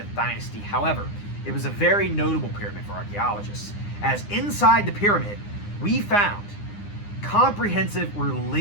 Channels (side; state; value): right; late; 9.8 ms